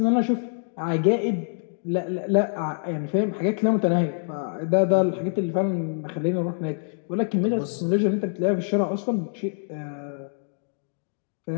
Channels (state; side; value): silent; right; digital silence